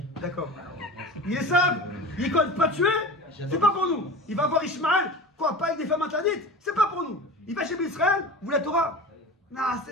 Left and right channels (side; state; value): both; normal; correlation 0.34